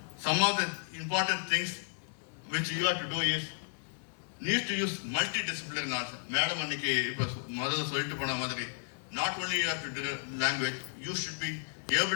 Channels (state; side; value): silent; right; 56 dB below the other